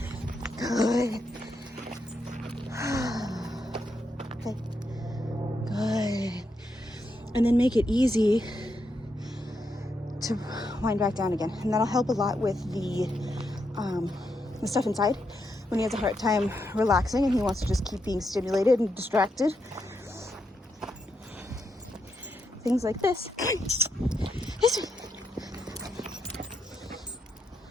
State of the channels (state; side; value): normal; both; correlation 0.82